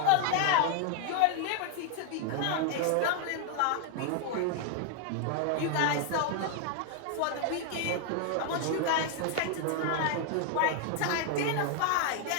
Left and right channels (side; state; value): both; different; correlation 0.00